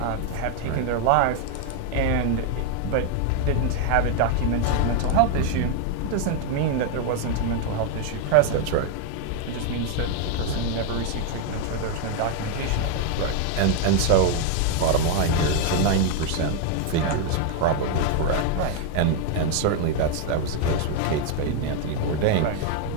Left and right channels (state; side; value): different; both; correlation 0.01